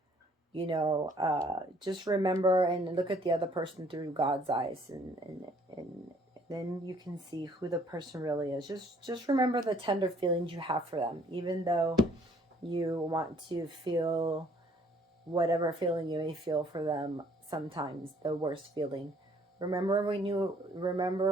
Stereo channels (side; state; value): both; normal; correlation 0.60